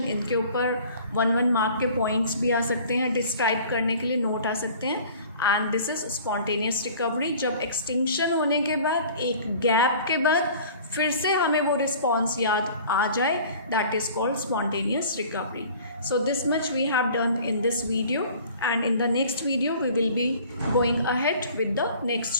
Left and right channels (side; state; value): both; inverted; correlation -0.47